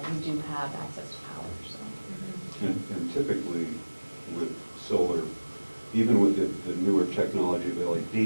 we do have access to power, so. And typically with solar, even with the newer technology of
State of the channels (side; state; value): both; inverted; correlation -1.00